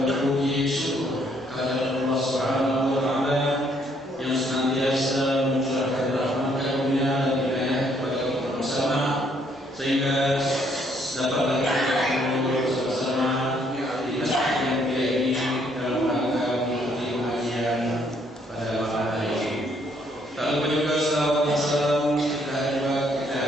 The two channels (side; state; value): both; normal; correlation 0.68